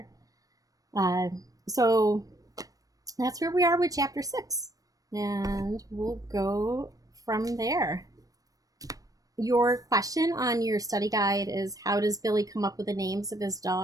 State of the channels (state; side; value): late; left; 0.17 ms